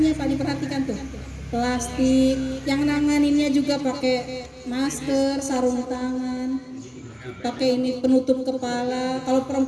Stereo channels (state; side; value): identical; both; correlation 1.00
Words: Pak diperhatikan tuh. Plastik, yang nanganinnya juga pakai masker, sarung tangan, pakai ini penutup kepala. Kalau